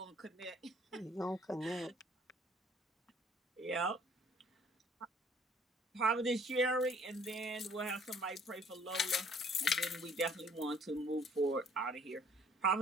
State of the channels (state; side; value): normal; both; correlation 0.58